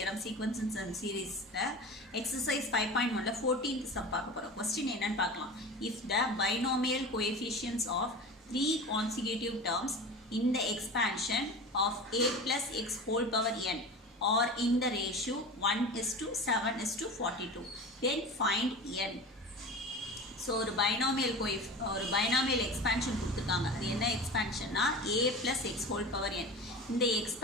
sequences and seriesல exercise 5.1ல 14th sum பார்க்க போறோம். Question என்னன்னு பார்க்கலாம். If the binomial coefficients of three consecutive terms in the expansion of a plus x whole power n are in the ratio 1:7:42, then find n. So ஒரு binomial expansion கொடுத்துருக்காங்க. அது என்ன எக்ஸ்பேன்ஷன்னா a + x whole power n. இந்த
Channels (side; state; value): both; normal; correlation 0.32